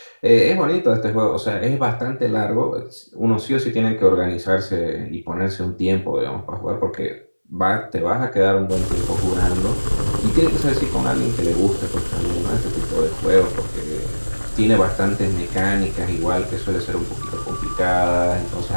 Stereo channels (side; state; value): both; inverted; correlation -1.00